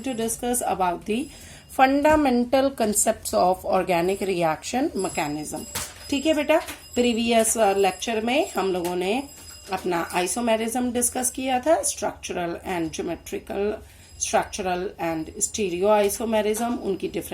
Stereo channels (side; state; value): both; identical; correlation 1.00